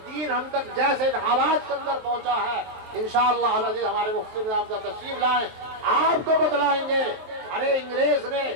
دین ہم تک جیسے ان حالات کے اندر پہنچا ہے انشاءاللہ العزیز ہمارے مفتی نظام صاحب تشریف لائیں آپ کو بتلائیں گے. ارے انگریز نے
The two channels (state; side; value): late; left; 23 ms